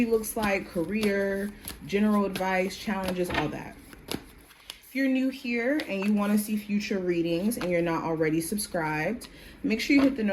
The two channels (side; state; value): both; identical; correlation 1.00